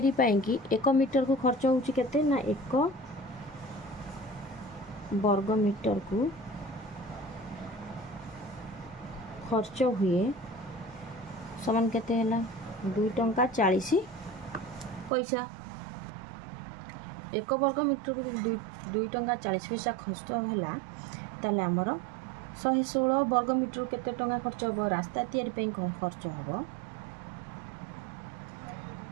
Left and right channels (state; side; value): drops out; left; at 15.1 s